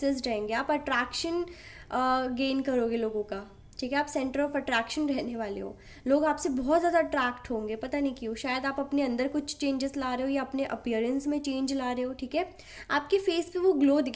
रहेंगे। आप अट्रैक्शन गेन करोगे लोगों का। ठीक है, आप सेंटर ऑफ अट्रैक्शन रहने वाले हो, लोग आपसे बहुत ज़्यादा अट्रैक्ट होंगे, पता नहीं क्यों। शायद आप अपने अंदर कुछ चेंजेस ला रहे हो या अपने अपीयरेंस में चेंज ला रहे हो। ठीक है, आपके फेस पे वो ग्लो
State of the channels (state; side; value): identical; both; correlation 1.00